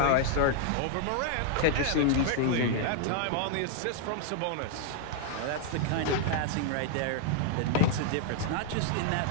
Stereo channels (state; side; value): different; both; correlation 0.00